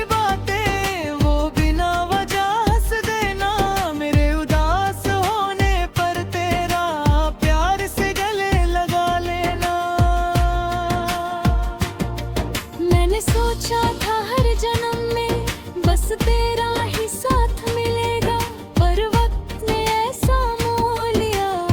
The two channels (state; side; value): identical; both; correlation 1.00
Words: बातें, वो बिना वजह हंस देना, मेरे उदास होने पर तेरा प्यार से गले लगा लेना। मैंने सोचा था हर जन्म में बस तेरा ही साथ मिलेगा, पर वक्त ने ऐसा मोह लिया